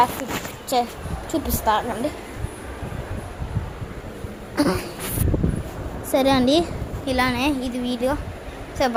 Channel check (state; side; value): identical; both; correlation 1.00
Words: స్లిప్ చూపిస్తానండి. సరే అండి, ఇలానే ఇది వీడియో. So